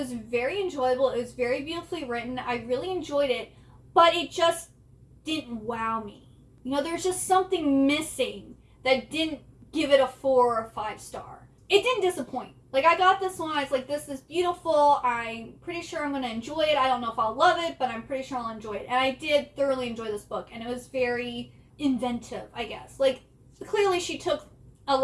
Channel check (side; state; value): both; identical; correlation 1.00